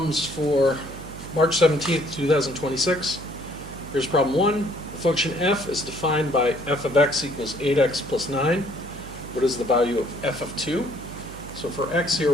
for March 17th, 2026. Here's problem 1. The function f is defined by f of x equals 8x plus 9. What is the value of f of 2? So for x here,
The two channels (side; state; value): right; noise; hum, 14 dB below the sound